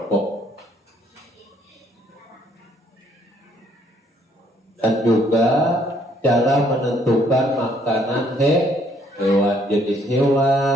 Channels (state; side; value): normal; both; correlation 0.66